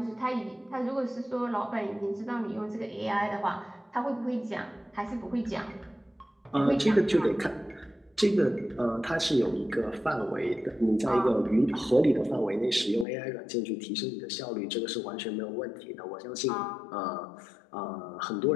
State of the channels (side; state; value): right; drops out; at 13.1 s